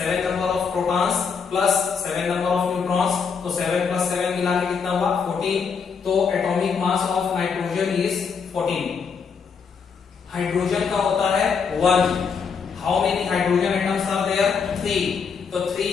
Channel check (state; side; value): quieter; right; 6.0 dB